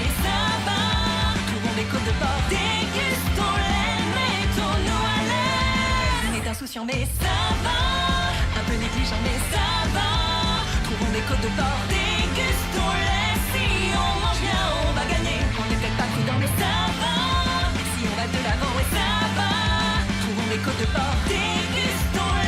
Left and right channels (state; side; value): identical; both; correlation 1.00